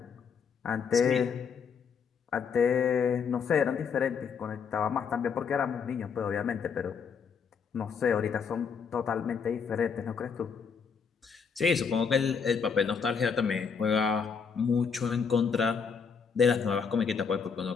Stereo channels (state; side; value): quieter; right; 6.2 dB